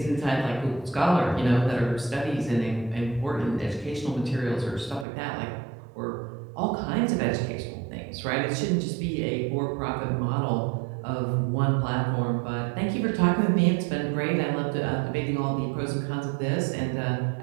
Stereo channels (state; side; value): drops out; left; at 5.1 s